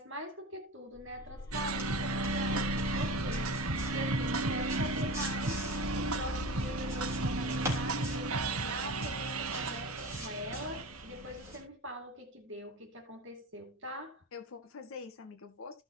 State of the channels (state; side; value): normal; both; correlation 0.31